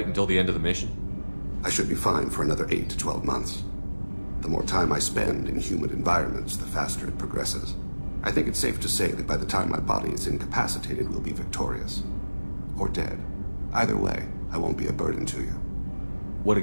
until the end of the mission? I should be fine for another 8 to 12 months. The more time I spend in humid environments, the faster it progresses. I think it's safe to say that by the time my body is incapacitated, we'll be victorious. Or dead. Either way, I won't be a burden to you. What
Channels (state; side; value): inverted; both; correlation -1.00